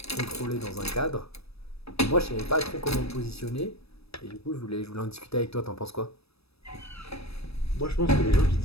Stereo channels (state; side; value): late; right; 0.78 ms